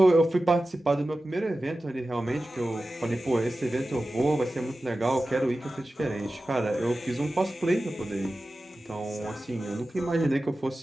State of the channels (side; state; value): both; normal; correlation 0.94